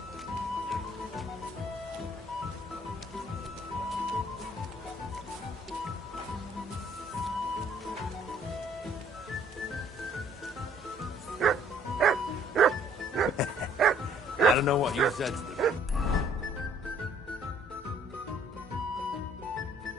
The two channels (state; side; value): normal; both; correlation 0.60